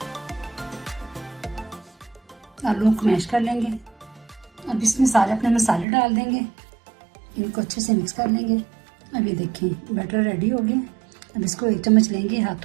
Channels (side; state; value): left; drops out; at 5.9 s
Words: आलू को मैश कर लेंगे। अब इसमें सारे अपने मसाले डाल देंगे, इनको अच्छे से मिक्स कर लेंगे। अब ये देखें बैटर रेडी हो गया। अब इसको 1 चम्मच लेंगे